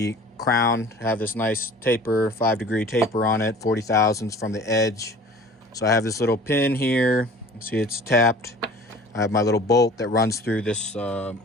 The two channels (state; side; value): normal; both; correlation 0.45